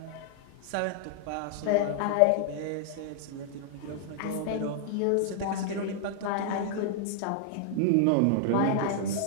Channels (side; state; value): both; different; correlation -0.01